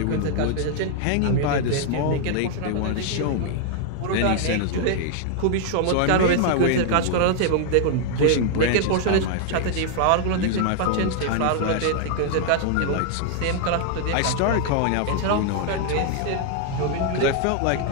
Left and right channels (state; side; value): different; both; correlation 0.00